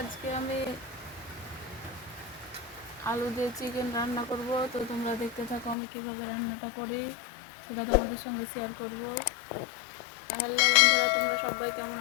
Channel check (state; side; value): drops out; right; at 5.8 s